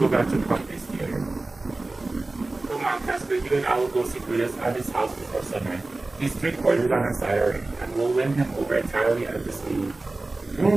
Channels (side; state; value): left; quieter; 3.1 dB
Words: back to Pompey's theater. Come on, Casper, you and I will go see Brutus at his house before sunrise. He's 3 quarters on our side already, and we'll win him over entirely at this meeting. All